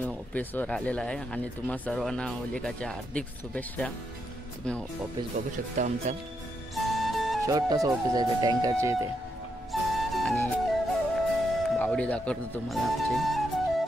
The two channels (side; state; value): both; normal; correlation 0.81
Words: ऑफिसवर आलेला आहे आणि तुम्हा सर्वांना होलिकाच्या हार्दिक शुभेच्छा. तुम्ही ऑफिस बघू शकता, आमचा छोटंसं ऑफिस आहे ते टँकरचे इथे. आणि बावडी दाखवतो तुम्हाला आमची,